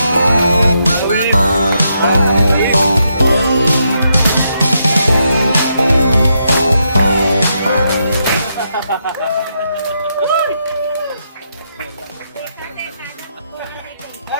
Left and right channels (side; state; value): both; inverted; correlation -0.80